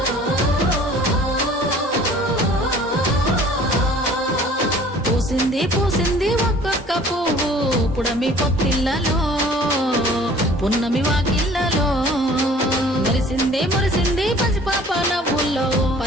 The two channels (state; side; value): normal; both; correlation 0.50